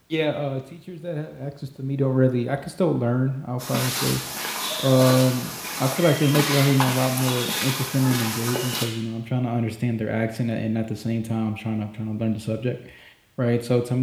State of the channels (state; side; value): identical; both; correlation 1.00